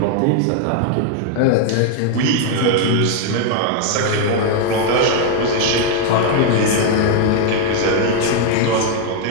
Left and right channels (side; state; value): both; different; correlation 0.00